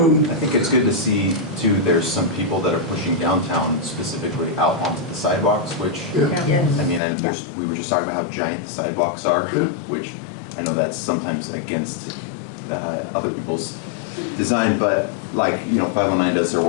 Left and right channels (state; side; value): drops out; right; at 7.0 s